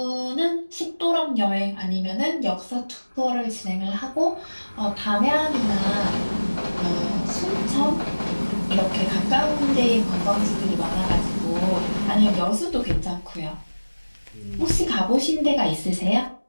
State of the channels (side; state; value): both; inverted; correlation -1.00